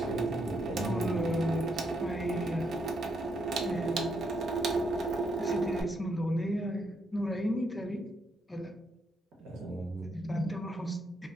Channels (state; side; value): normal; both; correlation 0.77